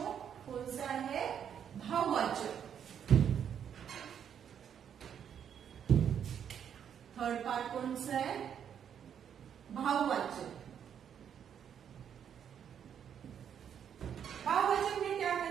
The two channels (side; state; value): left; quieter; 8.5 dB